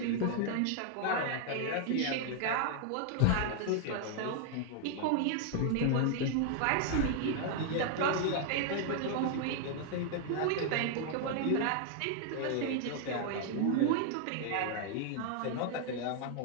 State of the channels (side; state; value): both; different; correlation 0.00